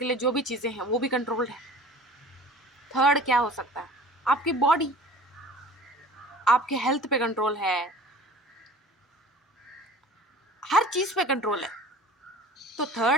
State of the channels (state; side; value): normal; both; correlation 0.43